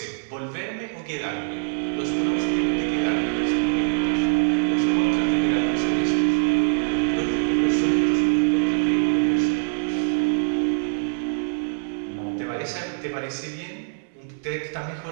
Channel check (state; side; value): silent; left; 60 dB below the other